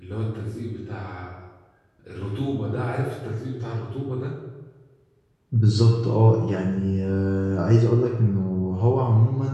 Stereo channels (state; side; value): identical; both; correlation 1.00